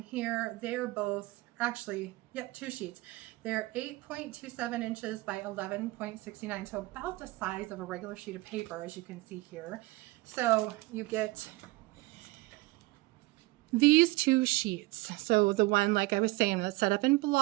here. They're both, actually, yep, 2 sheets. They're 8.27 inches by 11.69, so about the size of a regular sheet of paper, as you can see here. So you get these 2 sheets. So the one, like I was saying, that's set up in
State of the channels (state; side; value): quieter; left; 21.2 dB